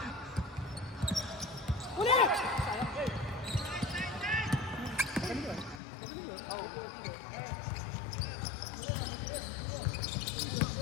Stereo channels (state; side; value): drops out; right; at 5.8 s